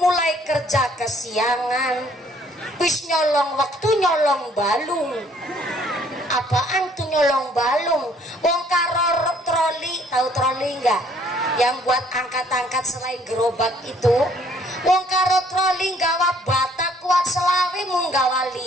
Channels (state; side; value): normal; both; correlation 0.62